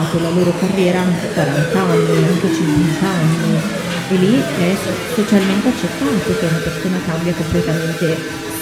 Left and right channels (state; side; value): identical; both; correlation 1.00